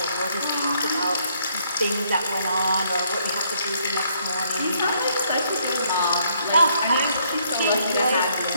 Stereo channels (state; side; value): inverted; both; correlation -0.69